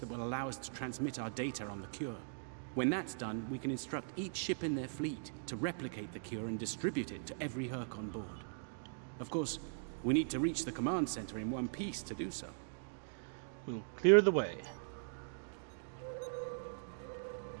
will allow us to transmit our data on the cure. When that's done, we can instruct each ship in their fleet to replicate the cure and distribute it to every Herc on board. Of course, we need to reach the command center in one piece to do so. We'll clear the way.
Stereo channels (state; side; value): silent; left; digital silence